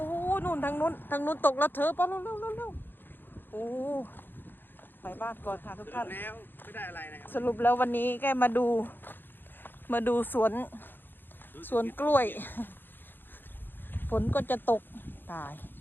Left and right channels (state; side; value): late; right; 0.096 ms